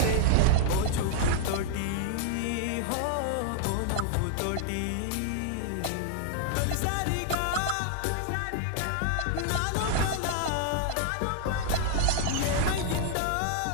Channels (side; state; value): both; different; correlation 0.00